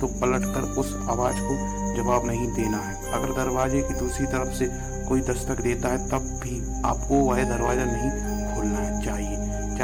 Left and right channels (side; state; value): both; identical; correlation 1.00